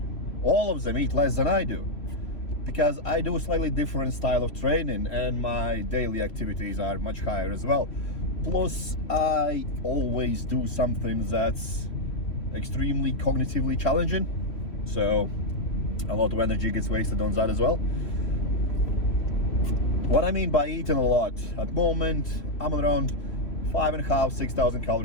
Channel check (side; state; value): right; late; 3.0 ms